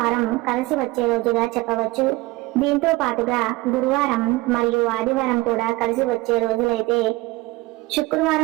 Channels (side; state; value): left; quieter; 20.8 dB